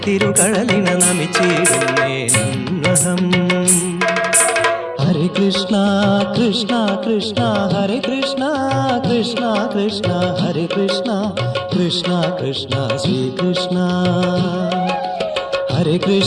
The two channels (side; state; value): both; identical; correlation 1.00